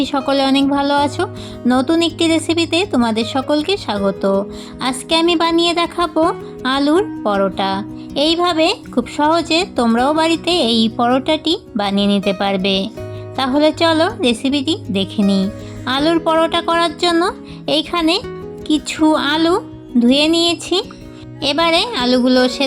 সকলে অনেক ভালো আছো। নতুন একটি রেসিপিতে তোমাদের সকলকে স্বাগত। আজকে আমি বানিয়ে দেখাবো আলুর পরোটা। এইভাবে খুব সহজে তোমরাও বাড়িতে এই পরোটাটি বানিয়ে নিতে পারবে। তাহলে চলো রেসিপিটি দেখে নিই। আলুর পরোটা করার জন্য এইখানে কিছু আলু ধুয়ে নিয়েছি। এবারে আলুগুলো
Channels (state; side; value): identical; both; correlation 1.00